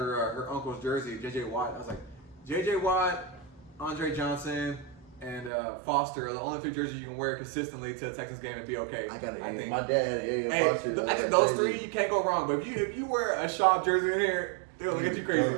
uncle's jersey, J.J. Watt. I was like, J.J. Watt, Andre Johnson, and Foster are the only 3 jerseys you can wear consistently to a Texans game and be okay. I think think. my dad had Ariel Foster. I think those 3, you can't go wrong. But if you wear a Schaub jersey in here, they'll look at you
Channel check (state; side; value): drops out; left; at 5.5 s